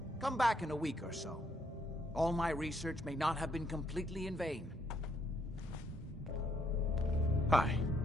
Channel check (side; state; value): both; normal; correlation 0.71